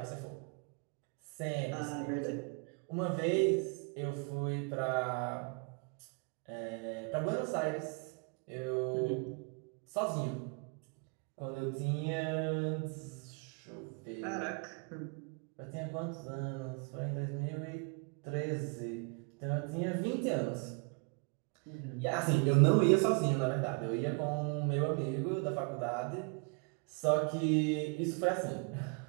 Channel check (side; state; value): left; quieter; 35.6 dB